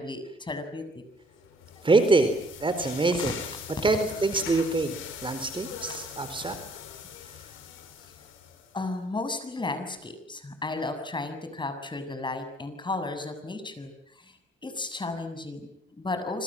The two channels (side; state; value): both; normal; correlation 0.61